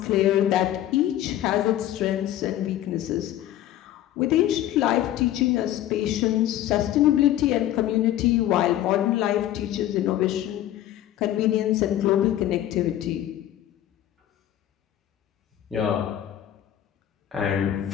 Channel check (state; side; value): quieter; right; 12.6 dB